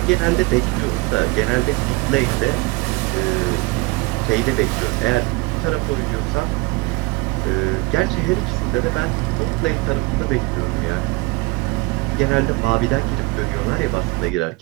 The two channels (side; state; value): left; quieter; 24.5 dB